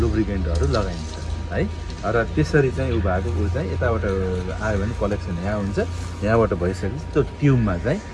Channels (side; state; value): both; identical; correlation 1.00